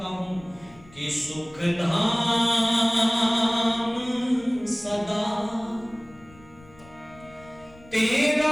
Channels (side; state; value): left; noise; rumble, 24 dB below the sound